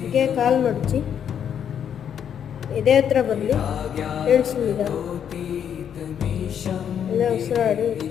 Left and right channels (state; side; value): quieter; right; 8.6 dB